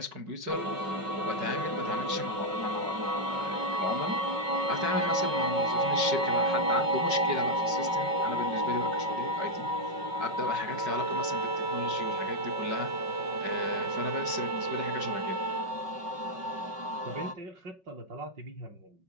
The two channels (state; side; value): late; left; 5.3 ms